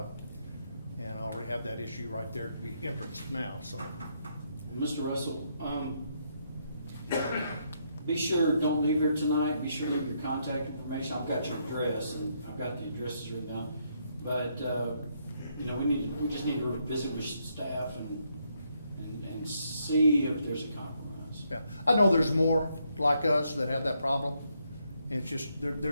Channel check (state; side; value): inverted; both; correlation -0.76